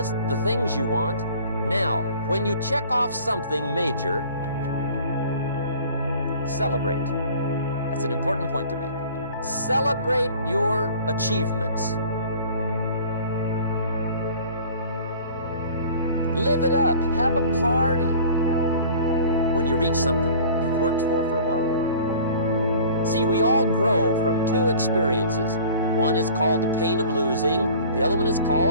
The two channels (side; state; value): both; inverted; correlation -0.46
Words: the things you want. Now, when you check off something major, celebrate. That's an important point to make. Celebrate your achievements. Live it up. Have a party when you reach something you've worked for a while. See, we all grow from 2 experiences. One is called the pain of losing. The other one is